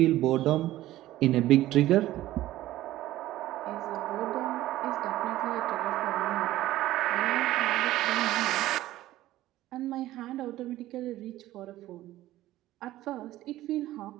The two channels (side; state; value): left; quieter; 15.3 dB